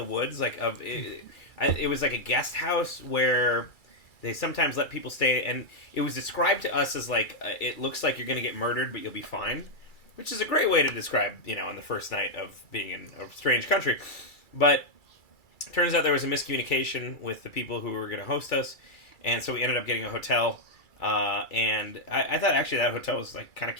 woods. Like it was like a guest house where they sometimes let people stay, and it was described to us as like it looks like you're gonna get murdered, but you'll be fine, which is a great way to describe on the first night of being in a strange country. But turns out there was a miscommunication with the people who were going to host us, and so we ended up getting a hotel. And I thought actually that hotel was like kind of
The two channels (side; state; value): right; late; 2.3 ms